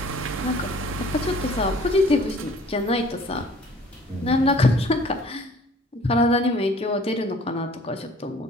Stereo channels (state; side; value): normal; both; correlation 0.53